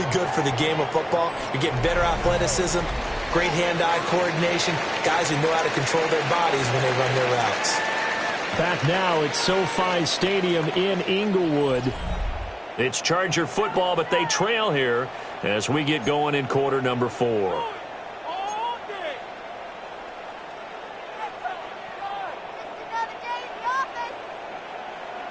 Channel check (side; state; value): both; identical; correlation 1.00